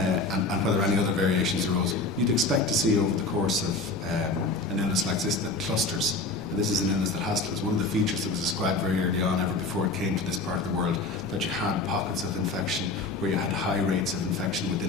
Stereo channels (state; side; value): quieter; right; 3.2 dB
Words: whether any other variations arose. You'd expect to see over the course of an illness like this that clusters, And this is an illness that is one of the features that was described very early on, ever before it came to this part of the world, that you had pockets of infection where you had high rates of infection